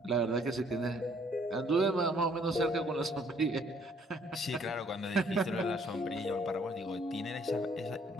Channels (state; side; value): normal; both; correlation 0.63